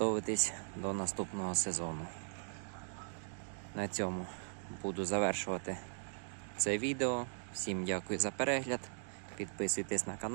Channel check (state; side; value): silent; left; digital silence